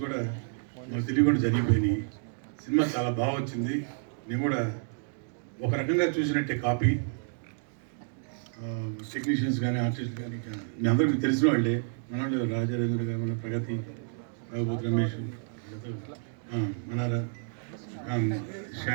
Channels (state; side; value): silent; left; digital silence